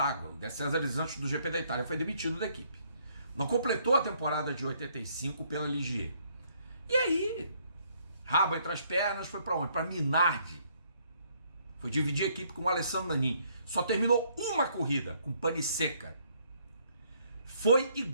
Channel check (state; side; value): inverted; both; correlation -0.68